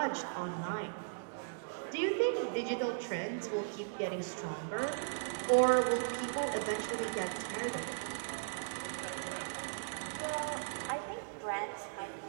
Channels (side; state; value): left; silent; digital silence